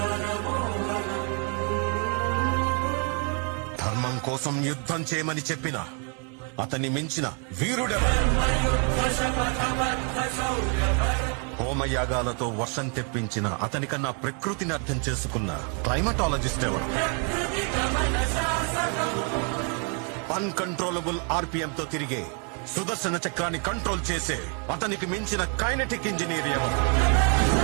ధర్మం కోసం యుద్ధం చేయమని చెప్పిన అతన్ని మించిన వీరుడెవరు? హోమయాగాలతో వర్షం తెప్పించిన అతనికన్నా ప్రకృతిని అర్థం చేసుకున్న క్లైమటాలజిస్ట్ ఎవరు? అన్కంట్రోలబుల్ ఆర్పిఎంతో తిరిగే సుదర్శన చక్రాన్ని కంట్రోల్ చేసే అతనికి మించిన కైనెటిక్ ఇంజనీర్ ఎవరు?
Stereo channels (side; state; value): left; quieter; 38.1 dB